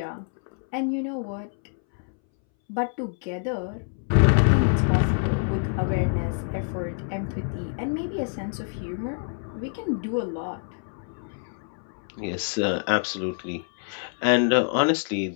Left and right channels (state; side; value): silent; right; 61 dB below the other